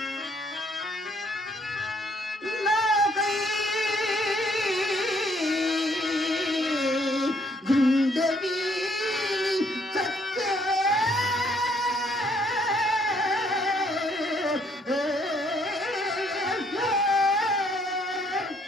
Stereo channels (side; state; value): both; normal; correlation 0.67